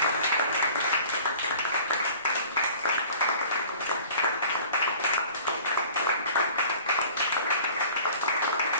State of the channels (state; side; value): inverted; both; correlation -0.46